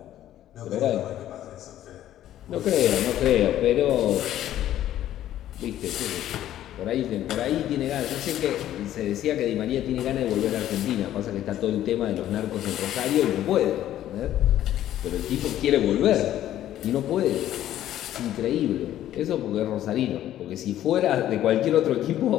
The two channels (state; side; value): quieter; right; 12.4 dB